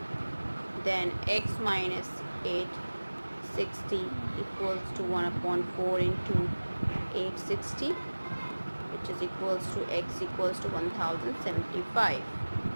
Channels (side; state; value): both; inverted; correlation -1.00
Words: then X minus 860 equals to 1 upon 4 into 860, which is equals to X equals to 1075.